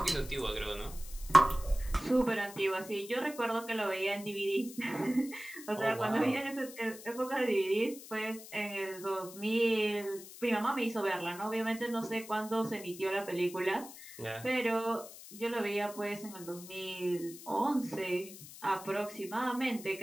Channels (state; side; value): noise; left; hiss, 15 dB below the sound